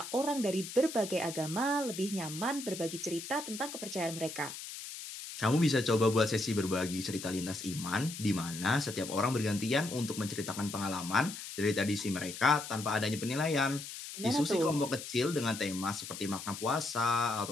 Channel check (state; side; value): noise; left; hiss, 10 dB below the sound